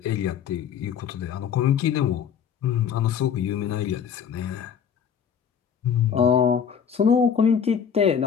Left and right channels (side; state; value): right; quieter; 7.6 dB